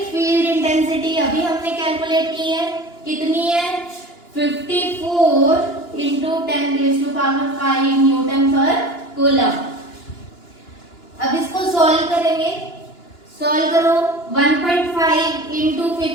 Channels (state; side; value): late; right; 2.9 ms